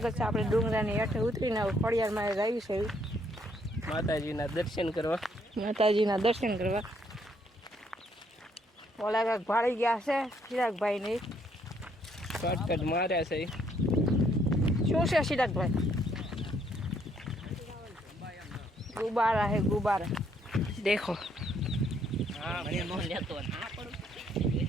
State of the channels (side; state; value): both; normal; correlation 0.69